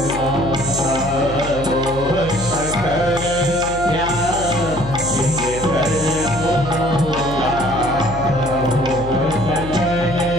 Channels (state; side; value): noise; left; hum, 10 dB below the sound